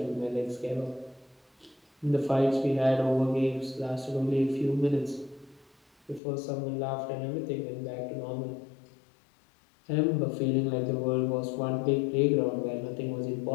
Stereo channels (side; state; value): right; drops out; at 6.2 s